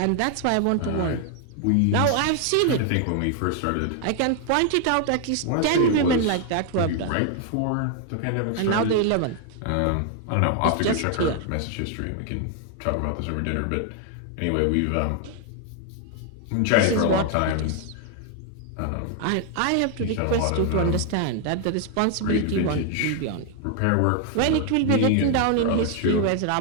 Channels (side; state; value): both; different; correlation 0.00